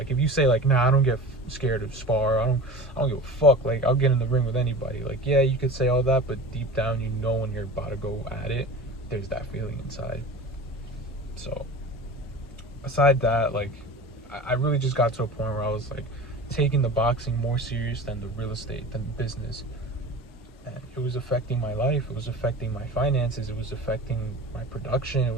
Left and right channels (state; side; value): normal; both; correlation 0.35